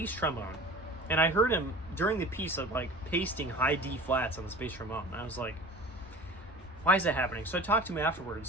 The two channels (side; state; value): both; normal; correlation 0.39